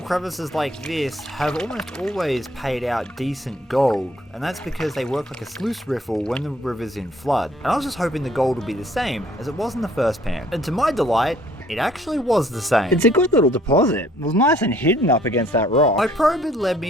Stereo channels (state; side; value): normal; both; correlation 0.61